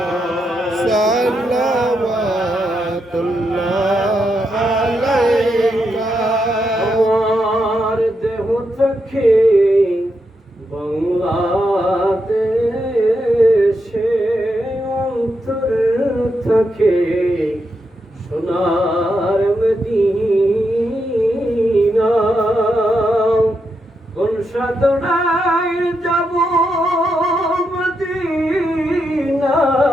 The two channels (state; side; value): normal; both; correlation 0.83